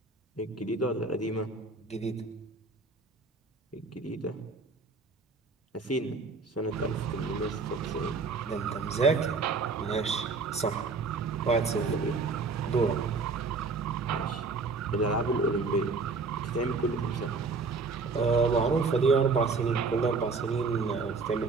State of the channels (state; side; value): quieter; left; 4.2 dB